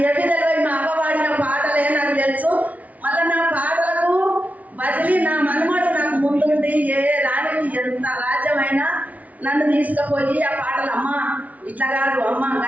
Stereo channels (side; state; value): left; late; 0.070 ms